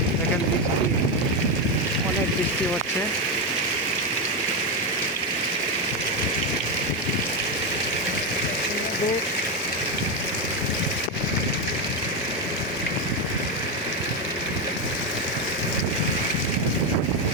দেখেন বৃষ্টি, অনেক বৃষ্টি হচ্ছে।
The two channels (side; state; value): both; normal; correlation 0.09